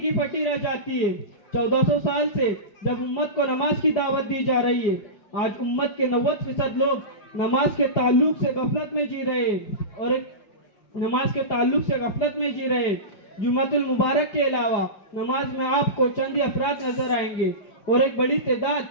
پھٹی رہ جاتی ہے۔ 1400 سال سے جب امت کو نماز کی دعوت دی جا رہی ہے، آج امت کے 90% لوگ نماز کے تعلق سے غفلت میں جی رہے ہیں۔ جمعۃ المبارک کے علاوہ نماز میں آپ کو چند ہی افراد نظر آئیں گے، اور ایک بڑی تعداد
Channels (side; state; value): right; late; 5.2 ms